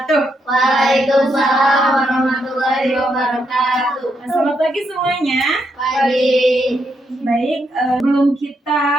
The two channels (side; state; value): both; normal; correlation 0.79